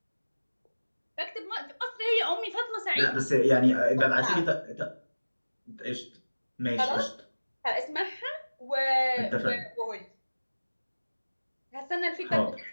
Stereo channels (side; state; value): both; inverted; correlation -1.00